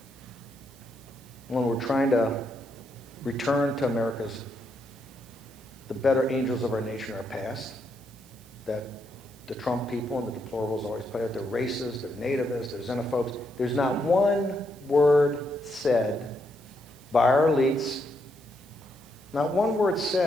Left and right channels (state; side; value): noise; right; hiss, 25 dB below the sound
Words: when we're trying to return to the better angels of our nation, our past, that the Trump people and the deplorables always put out. They're racist, they're nativists, they're xenophobes. There's not one word said by our elites, not one word